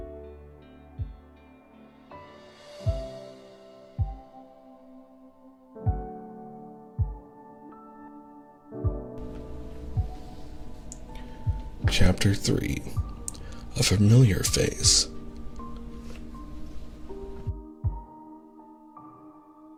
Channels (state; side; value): identical; both; correlation 1.00